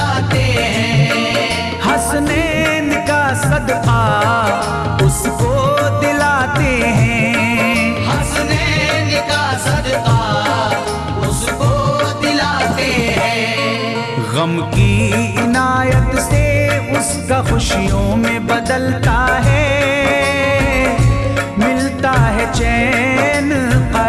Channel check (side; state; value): both; identical; correlation 1.00